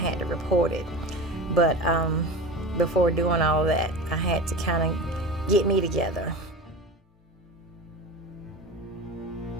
to report it. But before doing all that, I had to kind of get me together.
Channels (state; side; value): normal; both; correlation 0.31